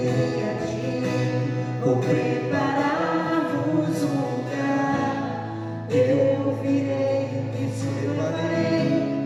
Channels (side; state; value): both; identical; correlation 1.00